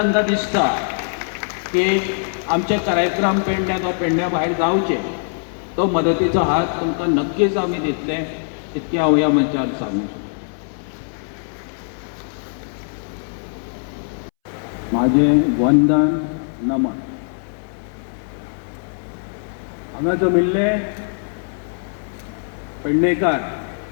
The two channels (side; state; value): right; silent; 64 dB below the other